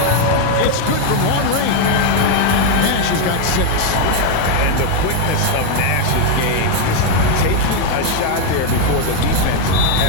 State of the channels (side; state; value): both; different; correlation 0.01